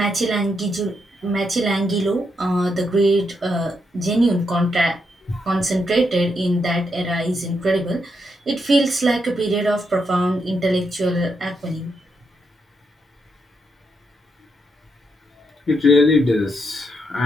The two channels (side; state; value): both; normal; correlation 0.81